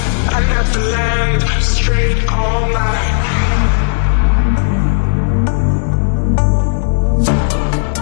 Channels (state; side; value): silent; right; digital silence